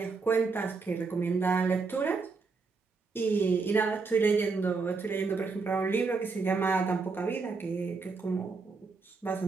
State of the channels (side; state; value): left; quieter; 4.4 dB